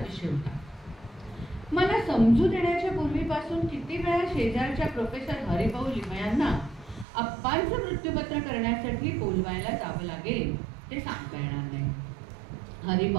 होता. मला समजू देण्याच्या पूर्वीपासून किती वेळा शेजारच्या प्रोफेसर हरिभाऊ लिमयांना अप्पांचं मृत्यूपत्र करण्यासाठी बोलवायला जावं लागेल ते सांगता येणार नाही.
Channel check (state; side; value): drops out; left; at 7.1 s